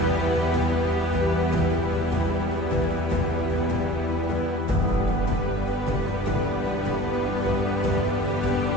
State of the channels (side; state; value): both; normal; correlation 0.42